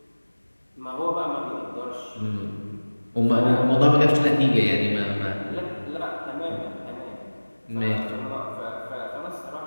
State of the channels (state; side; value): inverted; both; correlation -1.00